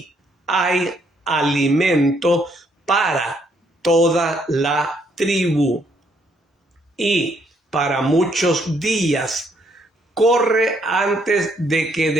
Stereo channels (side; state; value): both; normal; correlation 0.70